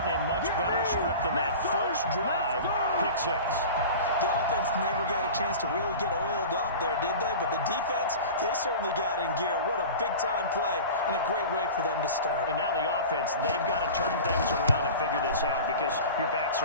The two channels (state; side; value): inverted; both; correlation -0.35